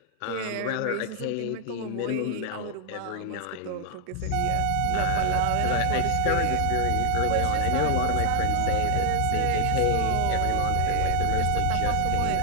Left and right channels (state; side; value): different; both; correlation 0.00